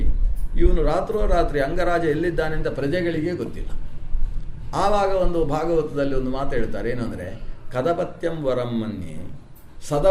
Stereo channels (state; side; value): identical; both; correlation 1.00